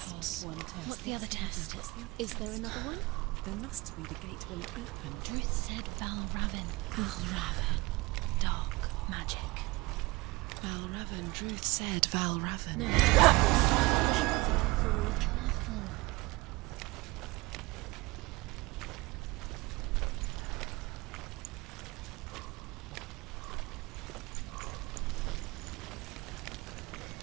passed one test. What's the other test? Is there another one? There must be. The gate won't open. Druth said Valravn. Valravn. Dark magic. Valravn. Druth said Valravn. No. Careful.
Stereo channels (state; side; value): quieter; left; 22.5 dB